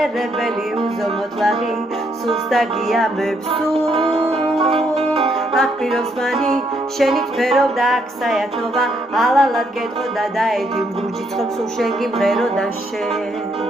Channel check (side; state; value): both; normal; correlation 0.72